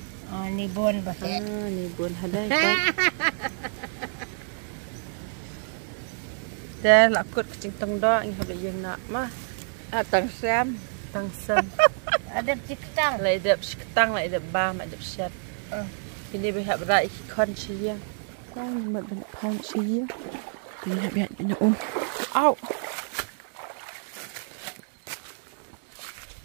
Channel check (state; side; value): silent; left; 60 dB below the other